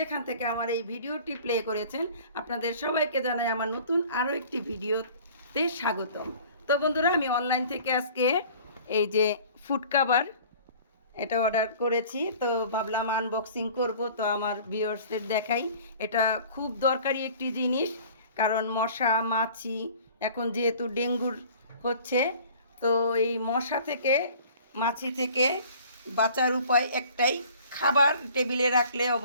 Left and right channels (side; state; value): both; inverted; correlation -0.48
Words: থেকে আমার এই ভিডিওটি প্লে করেছেন, আপনাদের সবাইকে জানাই আমার নতুন আরও একটি ভিডিওতে স্বাগতম। তো বন্ধুরা, আমি অনলাইন থেকে আজকে এই যে ফুড কাভার এটা অর্ডার করেছি। তো ভাবলাম আনবক্সিং করব, তো আমার ভিউয়ার্সদের দেখাই। এটা খুব দরকারি একটি জিনিস, কারণ মশা মাছি এখন যেহেতু ডেঙ্গুর হচ্ছে, তো এই মশা থেকে মাছি থেকে বাঁচার উপায় একটাই, খাবার টেবিলে রাখলে